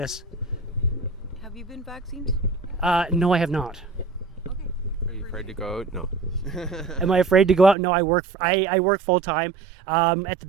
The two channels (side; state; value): left; drops out; at 7.8 s